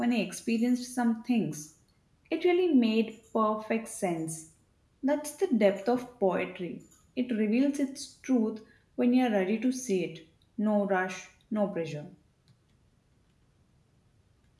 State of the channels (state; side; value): identical; both; correlation 1.00